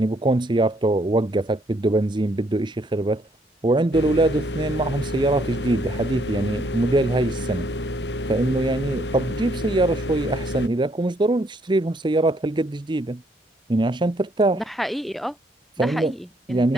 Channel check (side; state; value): both; normal; correlation 0.70